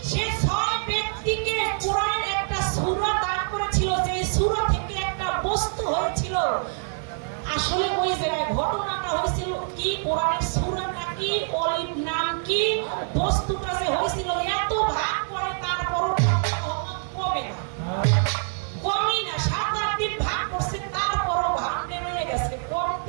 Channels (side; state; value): left; silent; digital silence